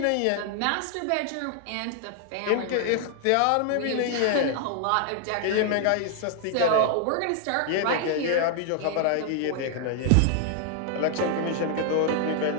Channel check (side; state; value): both; different; correlation 0.00